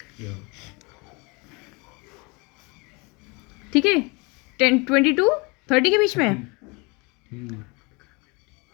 ठीक है, 20 to 30 के बीच में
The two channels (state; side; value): quieter; right; 28.6 dB